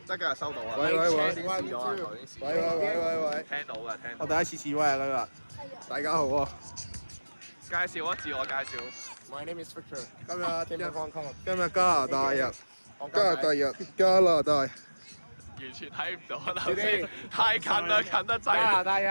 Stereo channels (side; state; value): both; inverted; correlation -1.00